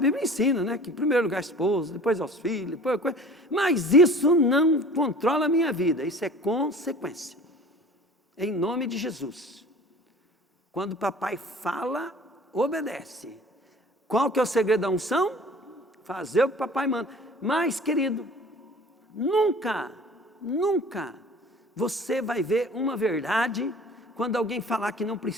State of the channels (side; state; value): both; normal; correlation 0.45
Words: ensina, né? Que em primeiro lugar a esposa, depois aos filhos, depois coisa. Mas isso não controla a minha vida, isso é consequência. Em nome de Jesus. Quando o papai fala, obedece. Qual que é o segredo da unção? Fazer o que o papai manda. Mas, querido, nunca você vai ver uma verdade quando alguém falar que não